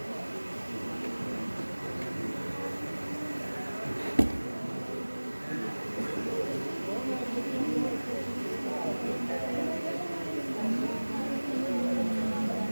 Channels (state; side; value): inverted; both; correlation -1.00